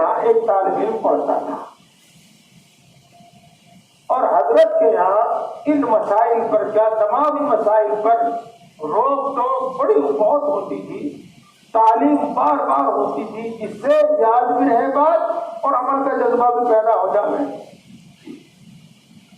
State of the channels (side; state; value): both; identical; correlation 1.00